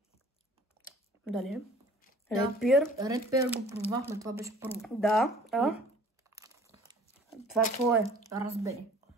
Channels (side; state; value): both; normal; correlation 0.50